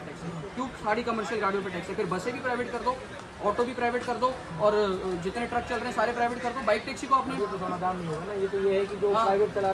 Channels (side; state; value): both; identical; correlation 1.00